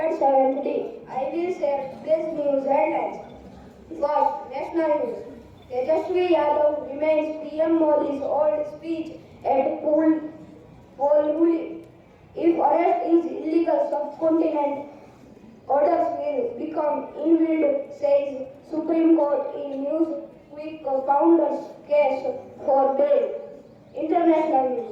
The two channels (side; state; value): both; identical; correlation 1.00